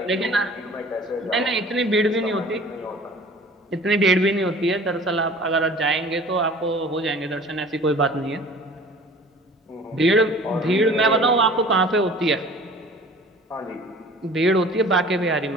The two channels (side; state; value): both; normal; correlation 0.46